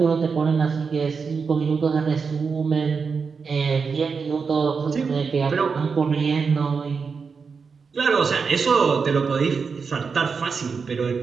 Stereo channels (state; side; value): quieter; left; 5.3 dB